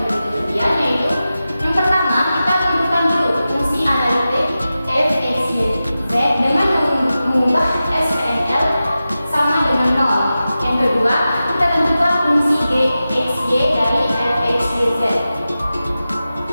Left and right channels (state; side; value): inverted; both; correlation -0.93